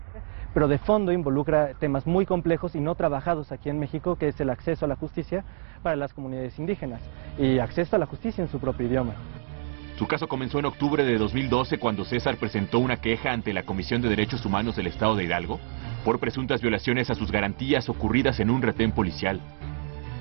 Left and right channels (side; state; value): left; silent; digital silence